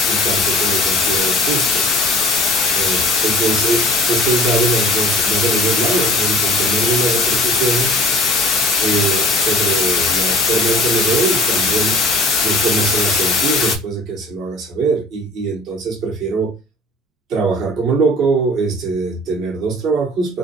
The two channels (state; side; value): normal; both; correlation 0.46